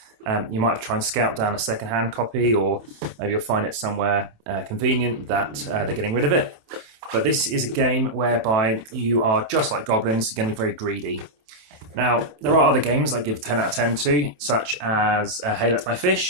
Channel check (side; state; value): left; late; 27 ms